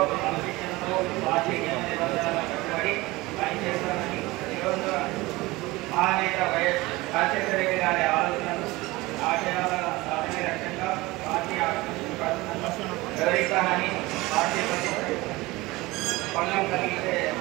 క్రమశిక్షణతో పార్టీ నియమ నిబంధనలకు కట్టుబడి పనిచేస్తానని మహానేత వైఎస్ రాజశేఖర రెడ్డి గారి ఆలోచనలు ఆశయాల సాధన లక్ష్యంగా పార్టీ వివరిస్తానని పార్టీ భంగం కలిగితే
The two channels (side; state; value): left; quieter; 20.9 dB